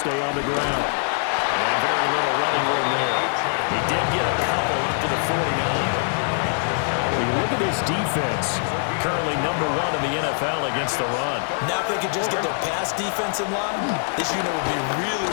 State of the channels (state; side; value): silent; right; digital silence